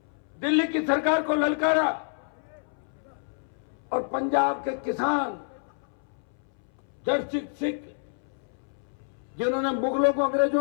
दिल्ली की सरकार को ललकारा और पंजाब के किसान जड़ सिख जिन्होंने मुगलों को,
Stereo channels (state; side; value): silent; right; 59 dB below the other